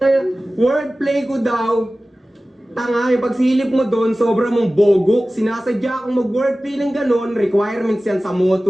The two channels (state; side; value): normal; both; correlation 0.96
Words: Wordplay ko daw. Tanga, yung pagsilip mo doon, sobra mong bogok. Sinasadya akong mag-wordplay ng ganon, requirements yan sa